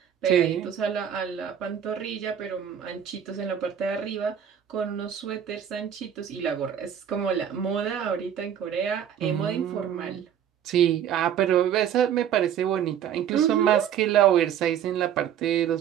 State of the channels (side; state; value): left; quieter; 9.3 dB